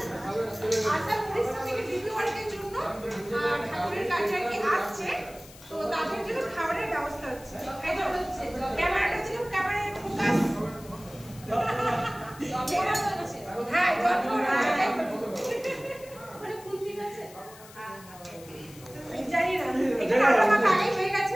আসাম উড়িষ্যা থেকে ডিগ্রি ওয়ার্কের জন্য ঠাকুরের কাছে আর কি আসছে। তো তাদের জন্য খাবারের ব্যবস্থা হচ্ছে। এই তো হচ্ছে ক্যামেরাটা ছিল, ক্যামেরায় ফোকাস। হ্যাঁ, মানে কোন ঠিক আছে? জানি না। এটা আমার আগে হয়ে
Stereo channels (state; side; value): noise; left; hiss, 20 dB below the sound